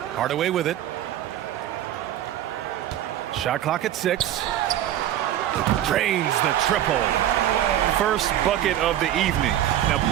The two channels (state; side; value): quieter; left; 12.0 dB